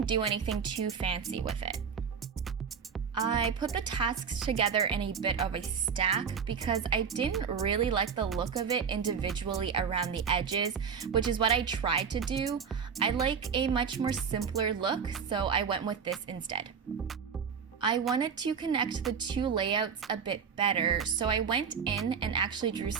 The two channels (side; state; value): left; quieter; 6.5 dB